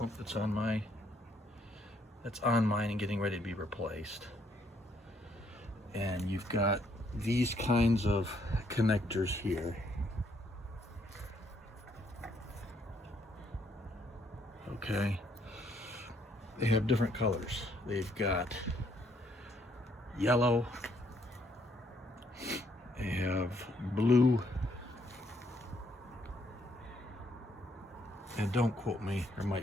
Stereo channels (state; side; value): normal; both; correlation 0.70